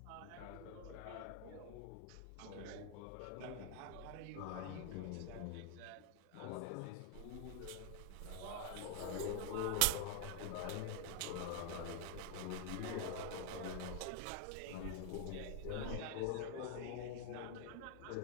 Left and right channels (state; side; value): different; both; correlation 0.00